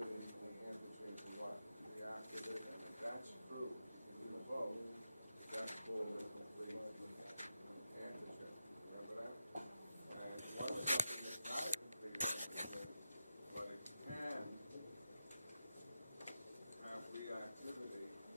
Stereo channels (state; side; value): inverted; both; correlation -0.90